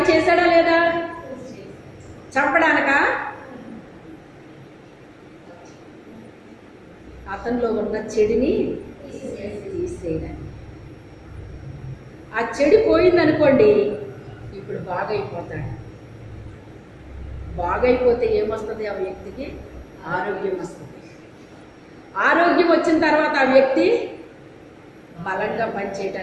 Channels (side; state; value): both; identical; correlation 1.00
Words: చేశాడా లేదా? చంపడానికా? అతనిలో ఉన్న చెడుని తీసేయడానికి. ఆ చెడు పోయిందనుకోండి, ఇప్పుడు బాగైపోతాడు. బాగైపోతే ఏమొస్తుంది? ఆ వ్యక్తికి ఆరోగ్యం వస్తుంది. ఆరోగ్యం వచ్చిన తర్వాత ఆ వ్యక్తి బలంగా